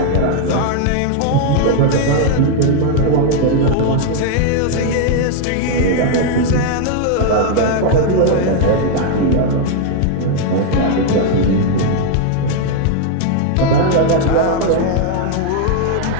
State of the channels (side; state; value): both; different; correlation 0.00